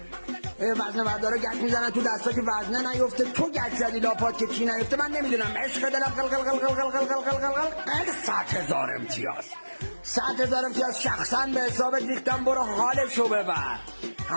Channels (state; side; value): inverted; both; correlation -1.00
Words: وزنه بردارا گچ میزنن تو دستا که وزنه نیفته، تو گچ زدی لاپات که چی نیفته. من نمیدونم، عشق دلم قل قل قل قل قل قل قل قل قل 100,000 امتیاز، 100,000 امتیاز شخصا به حساب ریختم. برو حالشو ببر،